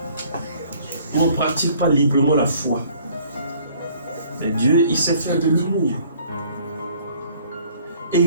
Où on ne pratique pas librement la foi. Mais Dieu, il sait faire de l'humour.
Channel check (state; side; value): inverted; both; correlation -0.57